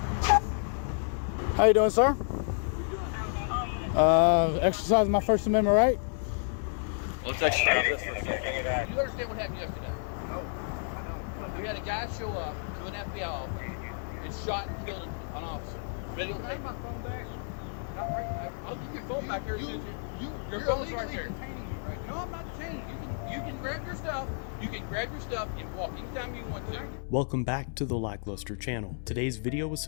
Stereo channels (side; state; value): right; silent; 57 dB below the other